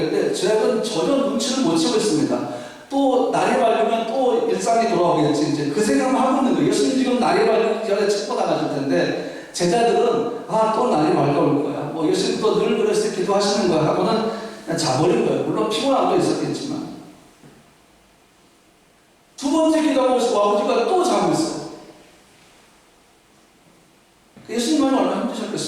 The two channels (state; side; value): identical; both; correlation 1.00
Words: 제가 전혀 눈치를 못 채고 있습니다. 또 날이 밝으면 또 일상이 돌아오겠지, 이제 그 생각만 하고 있는 거예요. 예수님 지금 날이 밝기 전에 책고 나가실 텐데, 제자들은 또 날이 밝아올 거야, 뭐 예수님 또 늘 그랬을 때 기도하시는 거야 하고는 그냥 자버린 거예요. 물론 피곤함도 있었겠지만. 두 번째 기도하고 아버지가 또 자고 있어요. 예수님은 얼마나